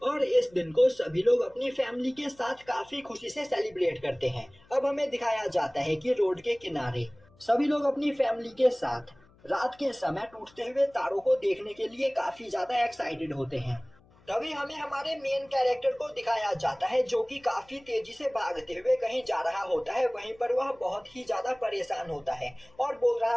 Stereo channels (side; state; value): left; noise; hum, 29 dB below the sound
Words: और इस दिन को सभी लोग अपनी फैमिली के साथ काफी खुशी से सेलिब्रेट करते हैं। अब हमें दिखाया जाता है कि रोड के किनारे सभी लोग अपनी फैमिली के साथ रात के समय टूटते हुए तारों को देखने के लिए काफी ज्यादा एक्साइटेड होते हैं। तभी हमें हमारे मेन कैरेक्टर को दिखाया जाता है जो कि काफी तेजी से भागते हुए कहीं जा रहा होता है। वहीं पर वह बहुत ही ज्यादा परेशान होता है और बोल रहा